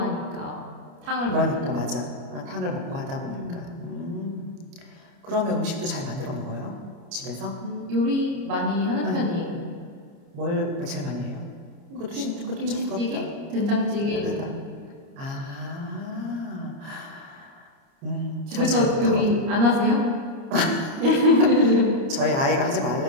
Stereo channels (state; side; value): late; left; 29 ms